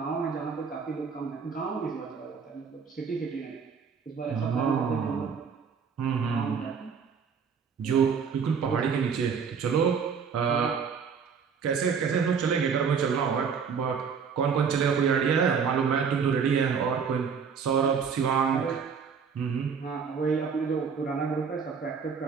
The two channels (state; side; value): quieter; left; 6.3 dB